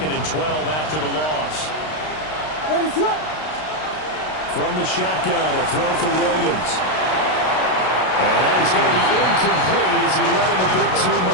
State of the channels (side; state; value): right; late; 32 ms